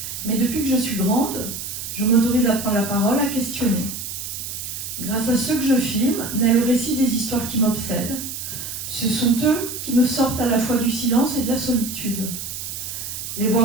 mais depuis que je suis grande, je m'autorise à prendre la parole, à questionner. Grâce à ceux que je filme, naît le récit des histoires qui m'obsèdent. Ce sont eux qui me sortent à la fois du silence et de la solitude. Les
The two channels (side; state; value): right; noise; hiss, 7 dB below the sound